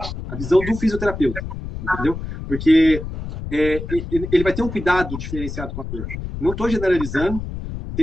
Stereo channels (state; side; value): noise; left; rumble, 7 dB below the sound